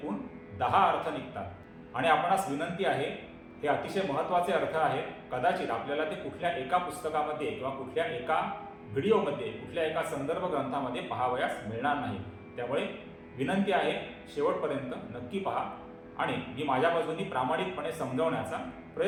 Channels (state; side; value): identical; both; correlation 1.00